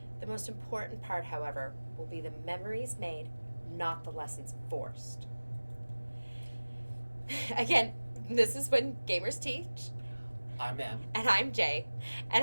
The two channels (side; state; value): both; inverted; correlation -1.00